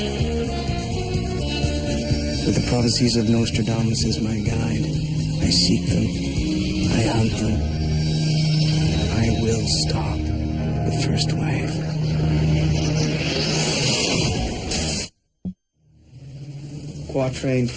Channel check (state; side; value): identical; both; correlation 1.00